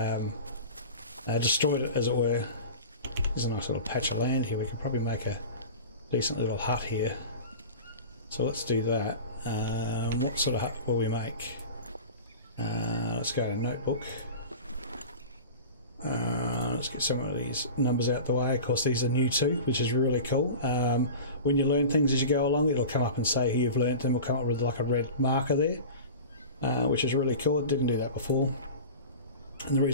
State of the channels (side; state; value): both; inverted; correlation -0.34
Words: destroyed it, as it were. There's a nice little patch of land here. We could probably make a decent little hut here. So let's do that. What sort of hut will we make? Let's go to notebook. Let's get some of these numbers out the way. Of course, these are new too, which is really cool. When you learn things as you go along, it'll come up and say who you've learnt them. It'll come up with like a red marker there, which is really cool. It didn't do that before. And the